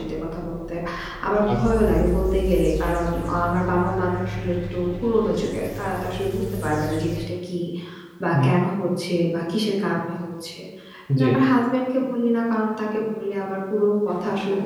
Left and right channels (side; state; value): both; identical; correlation 1.00